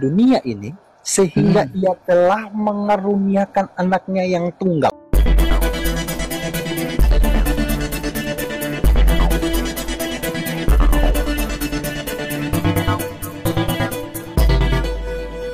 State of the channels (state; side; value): identical; both; correlation 1.00